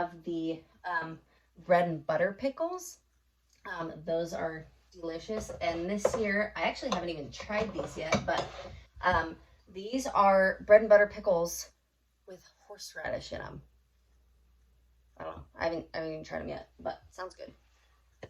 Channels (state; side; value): identical; both; correlation 1.00